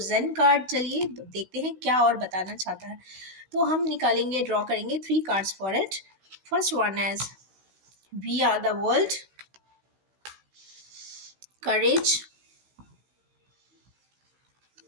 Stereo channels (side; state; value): left; late; 16 ms